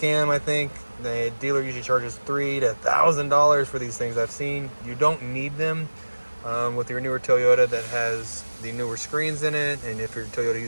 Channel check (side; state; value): both; inverted; correlation -1.00